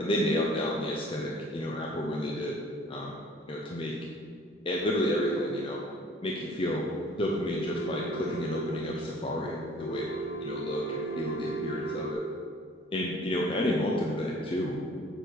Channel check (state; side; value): normal; both; correlation 0.52